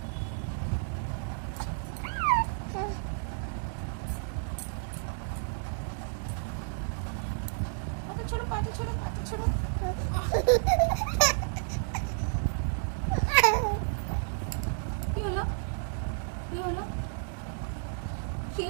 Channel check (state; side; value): silent; left; digital silence